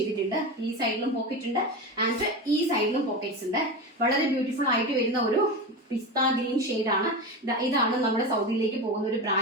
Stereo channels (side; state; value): both; normal; correlation 0.22